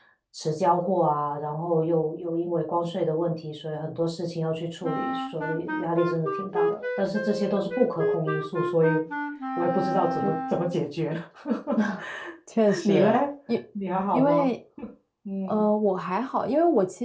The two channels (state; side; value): identical; both; correlation 1.00